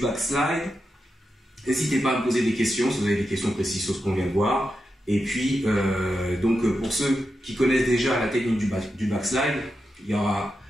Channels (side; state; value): both; normal; correlation 0.88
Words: N'hésitez pas à me poser des questions si vous avez des questions précises sur ce qu'on vient de voir. Et puis, pour ceux qui connaissent déjà la technique du backslide, il y